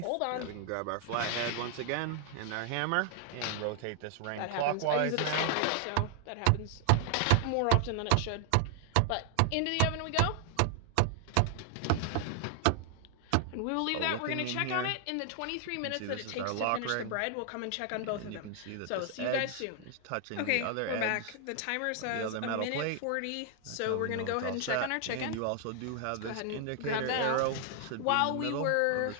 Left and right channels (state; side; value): different; both; correlation 0.00